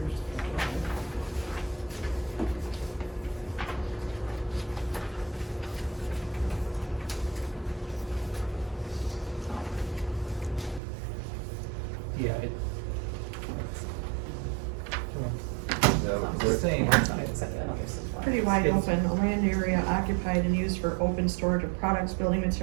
pages. Yeah, Yeah, it's the same. Pretty wide It's- open, a land area occupied and used for open storage of products, building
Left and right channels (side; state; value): left; drops out; at 10.8 s